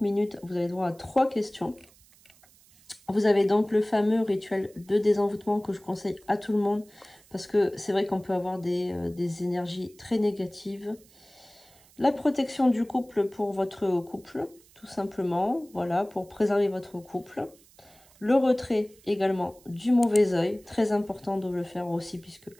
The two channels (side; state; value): right; noise; hiss, 28 dB below the sound